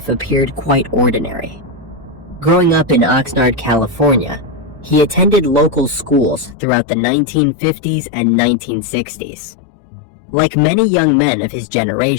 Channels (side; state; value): right; drops out; at 6.6 s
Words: appeared quite ordinary. Growing up in Oxnard, California, he attended local schools throughout the 1950s and 1960s. Like many young men of his